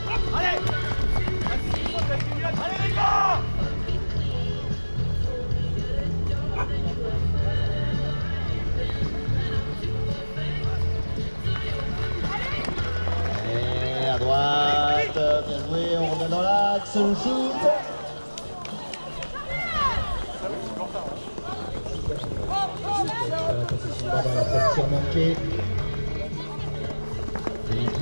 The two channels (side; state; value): both; inverted; correlation -1.00